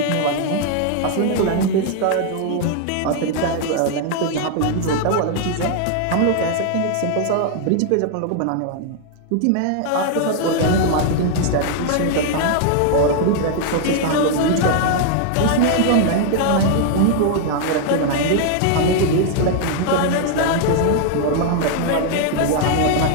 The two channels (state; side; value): different; both; correlation 0.00